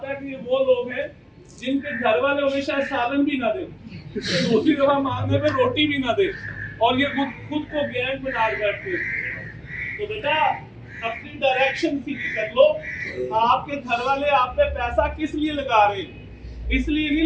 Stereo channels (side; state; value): both; identical; correlation 1.00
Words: है कि ये वो लोग हैं जिनके घर वाले उन्हें शायद सालन भी ना दे, दूसरी दफा मांगने पे रोटी भी ना दे, और ये खुद को गैंग बना बैठते। तो बेटा अपनी डायरेक्शन सीधी कर लो। आपके घर वाले आप पे पैसा किस लिए लगा रहे हैं? इसलिए नहीं